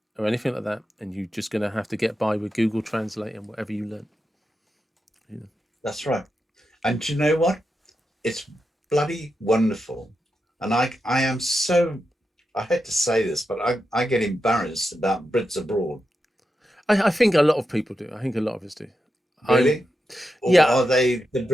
or anything like that, and you're just going to have to get by with Google Translate and whatever you learn. Yeah. that's right. And do you know what? It's bloody wonderful. And I am so, I hate to say this, but I get embarrassed about Brits abroad. I think a lot of people do. I think a lot of us do. I'm Really? Or Yeah. are they the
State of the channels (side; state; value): both; normal; correlation 0.88